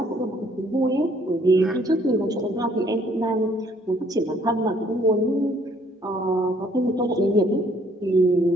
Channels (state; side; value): normal; both; correlation 0.63